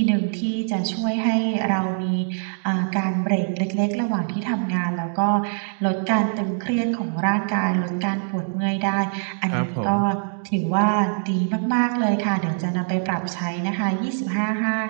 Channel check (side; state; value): left; silent; digital silence